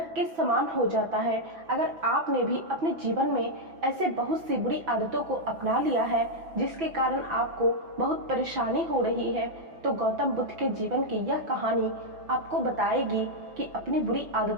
के समान हो जाता है। अगर आपने भी अपने जीवन में ऐसे बहुत सी बुरी आदतों को अपना लिया है जिसके कारण आपको बहुत परेशानी हो रही है, तो गौतम बुद्ध के जीवन की यह कहानी आपको बताएगी कि अपनी बुरी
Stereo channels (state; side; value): late; left; 6.0 ms